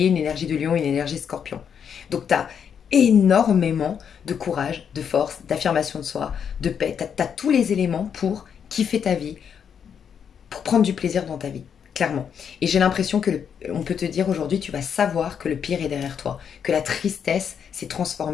une énergie de lion, une énergie de scorpion. Donc tu as énormément de courage, de force, d'affirmation de soi, de paix. Tu as tous les éléments pour kiffer ta vie, pour prendre du plaisir dans ta vie, clairement. Et j'ai l'impression que on peut te dire aujourd'hui, tu vas savoir que le pire est derrière toi, que la tristesse s'est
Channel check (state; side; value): quieter; right; 7.6 dB